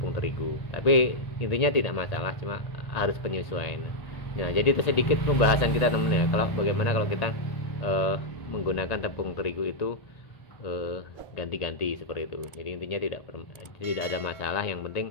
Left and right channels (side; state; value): right; late; 1.8 ms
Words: terigu. Tapi intinya tidak masalah, cuma harus penyesuaian. Nah jadi itu sedikit pembahasan kita teman-teman ya, kalau bagaimana kalau kita menggunakan tepung terigu itu ganti-ganti seperti itu. Jadi intinya tidak ada masalah, yang